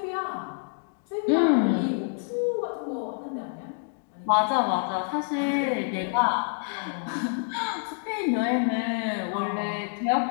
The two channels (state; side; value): silent; right; 60 dB below the other